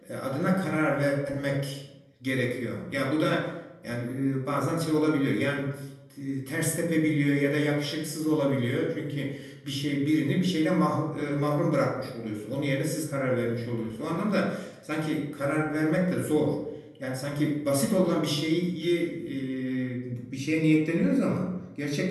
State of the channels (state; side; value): identical; both; correlation 1.00